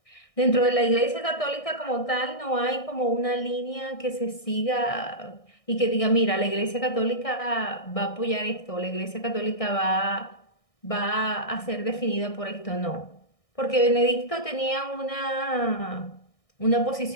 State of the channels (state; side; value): late; right; 1.6 ms